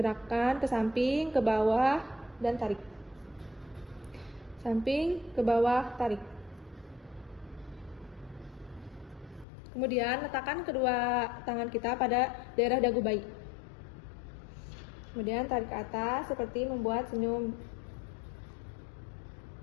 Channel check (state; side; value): drops out; right; at 9.5 s